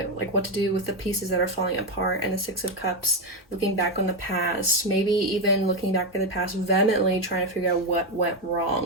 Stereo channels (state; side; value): normal; both; correlation 0.09